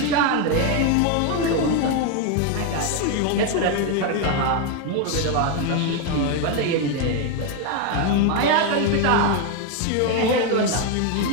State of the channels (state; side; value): different; both; correlation 0.02